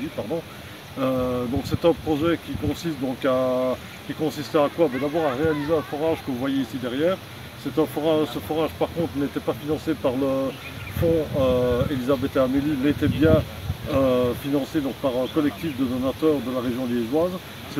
pardon. Donc c'est un projet qui consistait à quoi? D'abord à réaliser un forage que vous voyez ici derrière. Ce forage par contre n'était pas financé par le fonds Elisabeth et Amélie, mais était bien financé donc, par un collectif de donateurs de la région liégeoise.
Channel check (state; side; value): identical; both; correlation 1.00